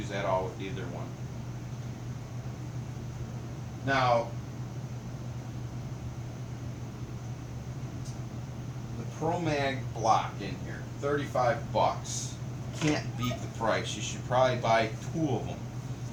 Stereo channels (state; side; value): identical; both; correlation 1.00